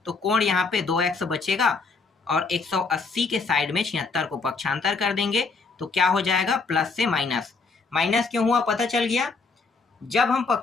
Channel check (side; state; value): right; quieter; 4.4 dB